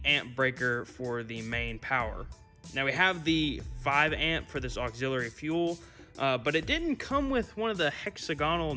amp breaker for the main power. Now we have the 5 amp for this auxiliary fuel, but it didn't come with one of the hexagonal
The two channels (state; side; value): identical; both; correlation 1.00